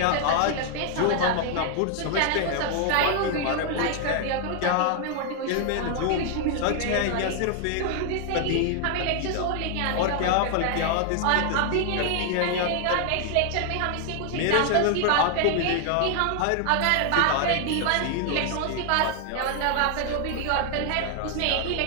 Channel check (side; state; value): both; different; correlation 0.00